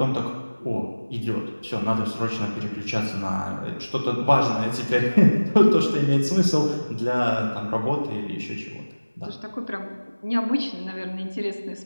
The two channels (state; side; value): inverted; both; correlation -1.00